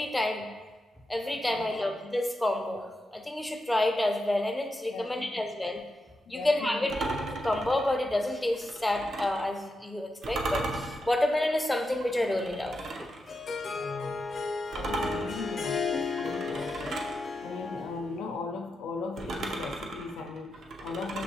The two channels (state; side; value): normal; both; correlation 0.87